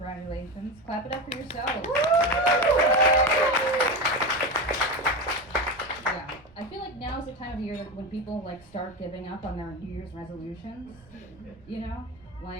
Clap it up for yourselves. Yeah, I feel like now is the time of year that when people like start giving up on their New Year's resolutions, you know?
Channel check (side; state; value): right; noise; rumble, 26 dB below the sound